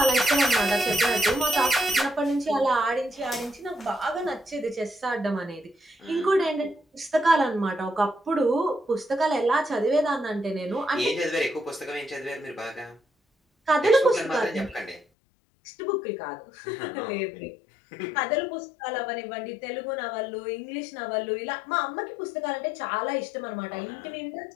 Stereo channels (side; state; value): right; drops out; at 15.1 s